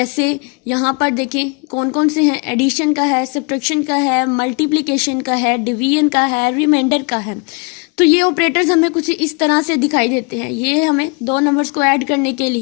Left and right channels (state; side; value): quieter; right; 33.2 dB